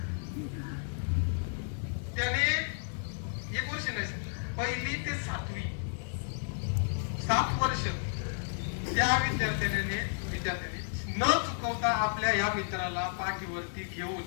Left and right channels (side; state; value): right; silent; digital silence